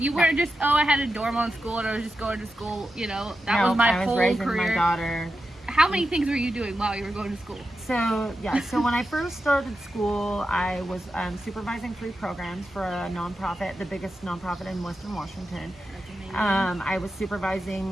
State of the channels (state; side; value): normal; both; correlation 0.89